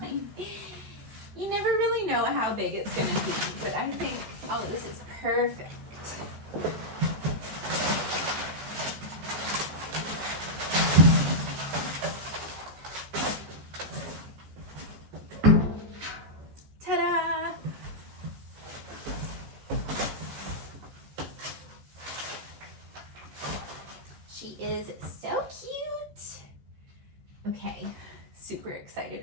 you never really know how big it's gonna be, but I think, oh, this is perfect. Ta-da! She is so cute. Okay, super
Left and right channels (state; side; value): late; left; 13 ms